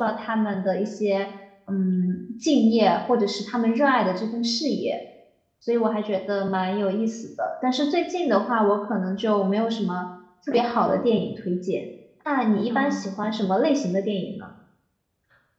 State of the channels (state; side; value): identical; both; correlation 1.00